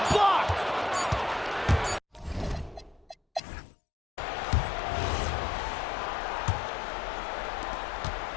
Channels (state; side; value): drops out; right; at 3.4 s